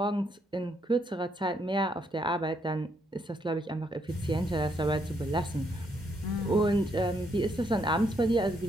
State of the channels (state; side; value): normal; both; correlation 0.74